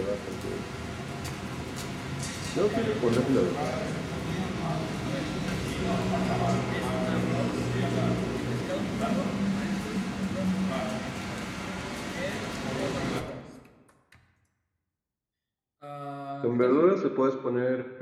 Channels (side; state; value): both; identical; correlation 1.00